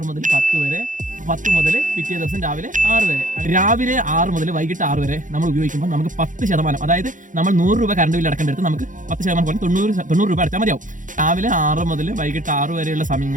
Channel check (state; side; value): late; left; 0.38 ms